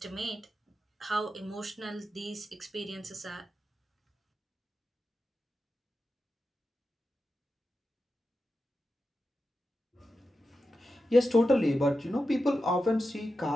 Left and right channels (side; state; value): both; normal; correlation 0.91